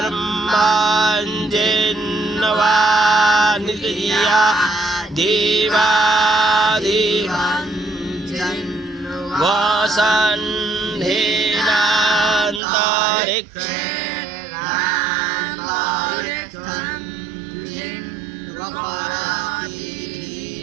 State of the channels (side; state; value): left; drops out; at 12.6 s